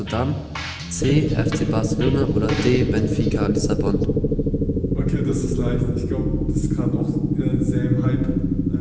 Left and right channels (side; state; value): both; identical; correlation 1.00